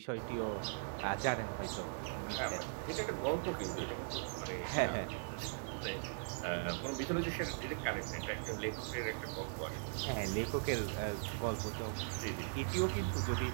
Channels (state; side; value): silent; left; 51 dB below the other